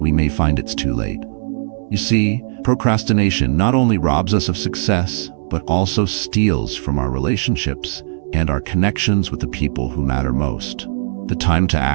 may find it's too late. You see, procrastination not only robs us of success, but also steals from our relationships and our connections with the people who matter most. The time to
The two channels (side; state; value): left; silent; digital silence